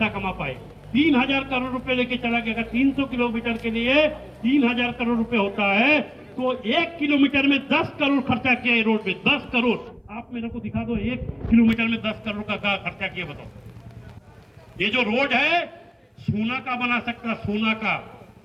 कमा पाए। 3000 करोड़ रुपए लेके चला गया। अगर 300 किलोमीटर के लिए 3000 करोड़ रुपए होता है तो 1 किलोमीटर में 10 करोड़ खर्चा किया है रोड पे, 10 करोड़। आप मेरे को दिखा दो 1 किलोमीटर में 10 करोड़ का खर्चा किया, बताओ। ये जो रोड है सोना का बना सकता, सोना का,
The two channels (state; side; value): identical; both; correlation 1.00